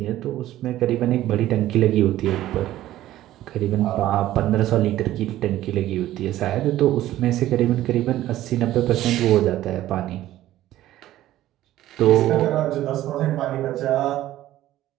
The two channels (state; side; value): quieter; left; 14.2 dB